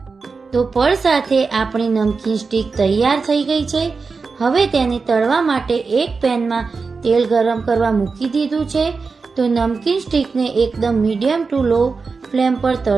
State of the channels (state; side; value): quieter; left; 4.6 dB